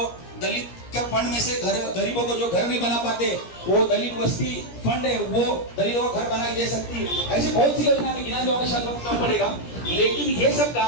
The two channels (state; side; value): late; right; 17 ms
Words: दलित के फंड में से गरीबों को जो घर नहीं बना पाते, वो दलित वस्ती फंड है, वो दलितों को घर बना के दे सकती है। ऐसी बहुत सी योजना में गिना जाओगे शायद वक्त कम पड़ेगा, लेकिन ये सब